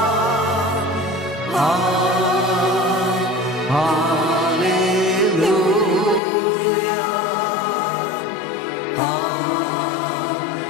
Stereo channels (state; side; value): drops out; right; at 6.2 s